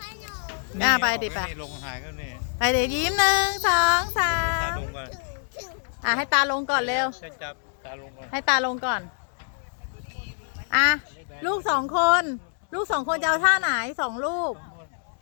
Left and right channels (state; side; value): silent; right; digital silence